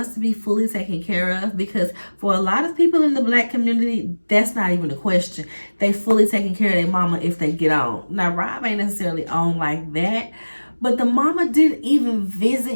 to be fully taken care of, because for a lot of people in the Black community, that's not even a question. They fully taking care of their mama if they get on. Now, Rob ain't necessarily on like that, but the mama didn't even visit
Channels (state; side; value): inverted; both; correlation -1.00